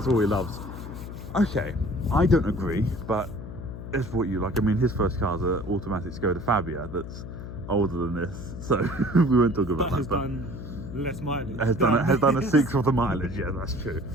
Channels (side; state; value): left; noise; hum, 10 dB below the sound